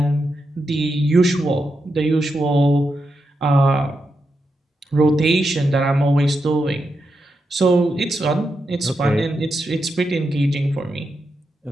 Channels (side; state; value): both; normal; correlation 0.86